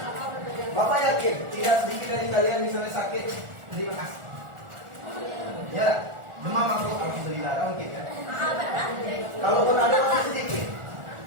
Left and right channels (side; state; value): left; late; 1.4 ms